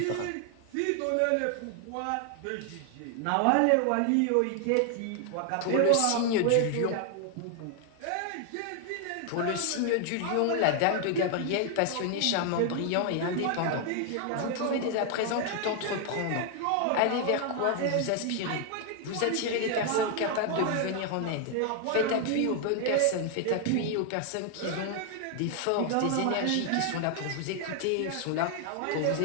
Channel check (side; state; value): both; different; correlation 0.00